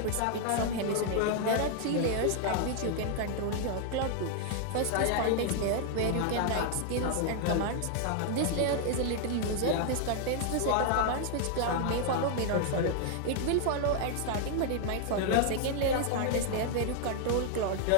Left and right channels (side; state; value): both; different; correlation 0.00